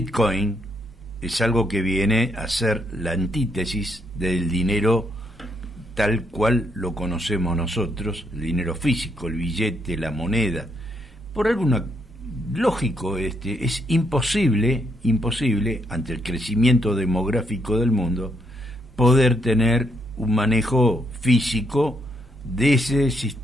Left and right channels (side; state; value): both; normal; correlation 0.75